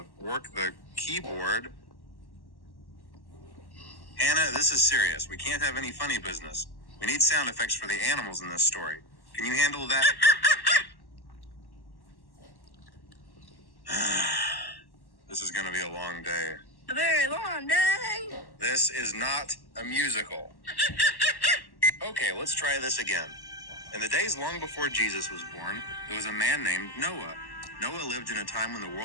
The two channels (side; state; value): right; late; 1.1 ms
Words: work the keyboard. Hannah, this is serious. We can't have any funny business. We need sound effects for the animals in this story. Can you handle that? This is gonna be a long day. A very long day. This is not a musical. Okay, let's try this again. In the days long before Jesus was born, there was a man named Noah. Noah lived in a time when the